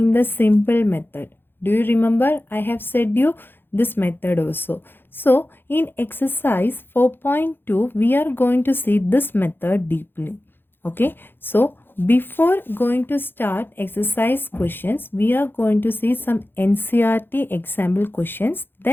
the simple method. Do you remember? I have said you this method also. So, in exercise 4.2, we are going to see this method deeply. Okay, so before going to start exercise questions, we are going to see some NCRT example questions.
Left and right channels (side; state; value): right; late; 0.10 ms